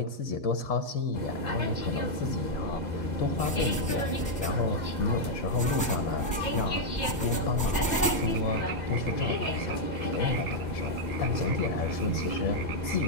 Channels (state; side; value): normal; both; correlation -0.02